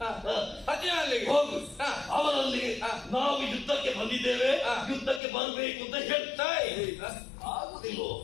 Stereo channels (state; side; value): drops out; right; at 5.2 s